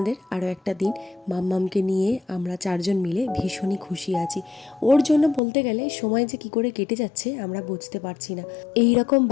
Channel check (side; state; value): right; drops out; at 5.4 s